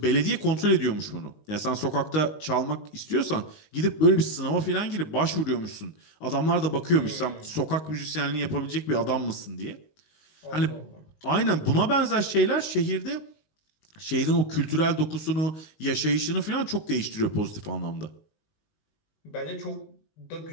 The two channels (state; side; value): late; right; 19 ms